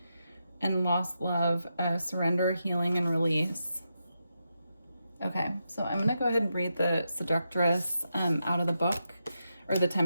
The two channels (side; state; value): both; inverted; correlation -0.86